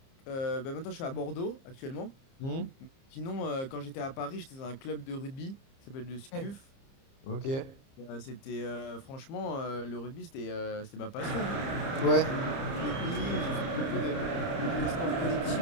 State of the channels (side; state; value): right; late; 30 ms